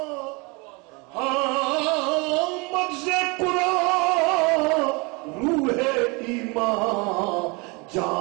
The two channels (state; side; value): quieter; left; 28.8 dB